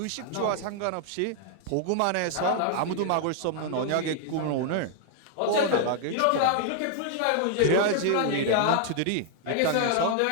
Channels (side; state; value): both; different; correlation 0.00